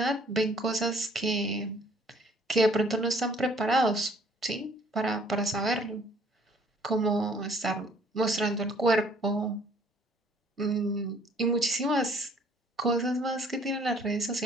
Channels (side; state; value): both; normal; correlation 0.59